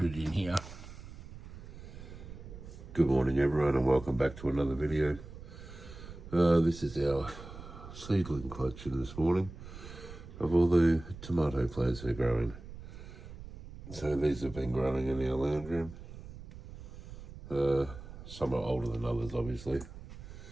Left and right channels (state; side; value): noise; right; rumble, 14 dB below the sound